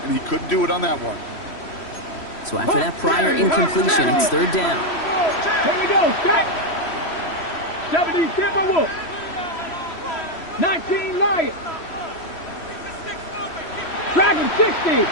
and he couldn't do it on that one. So after that prior incompletion, it's 3rd down. Here we go. Stop. 70 Timberwolves. 19 Lions. Dragon 60. Here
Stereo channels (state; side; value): late; right; 3.1 ms